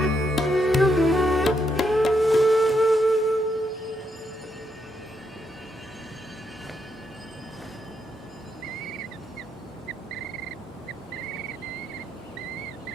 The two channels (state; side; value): normal; both; correlation 0.79